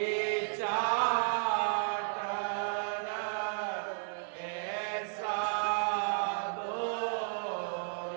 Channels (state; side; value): silent; left; digital silence